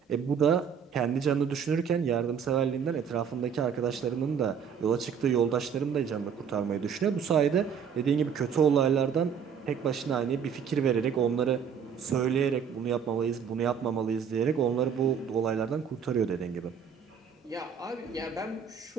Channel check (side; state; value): left; quieter; 7.2 dB